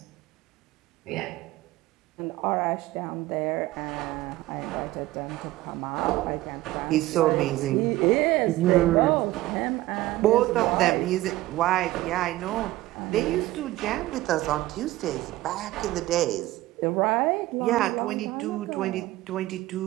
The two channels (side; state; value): left; quieter; 17.1 dB